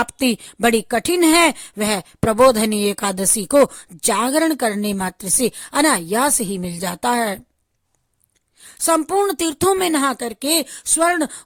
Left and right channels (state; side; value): identical; both; correlation 1.00